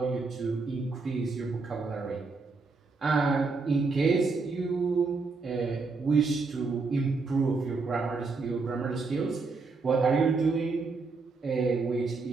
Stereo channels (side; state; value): left; quieter; 4.1 dB